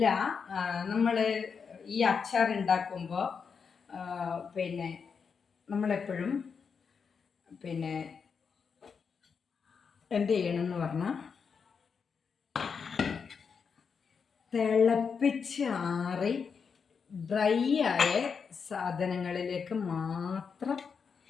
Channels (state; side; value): quieter; right; 6.0 dB